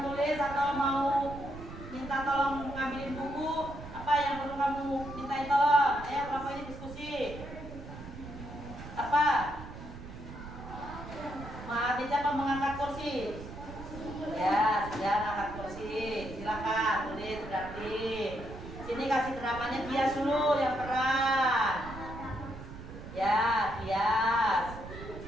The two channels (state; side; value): noise; right; rumble, 12 dB below the sound